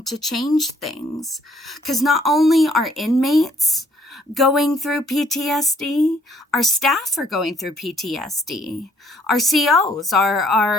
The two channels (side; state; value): both; normal; correlation 0.64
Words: to change things. Because not only are inmates going through PTSD, our staff are going through PTSD. Our COs,